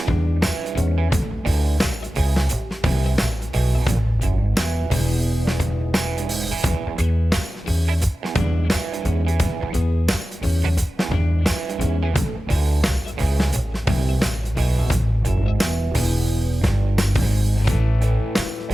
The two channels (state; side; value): normal; both; correlation 0.95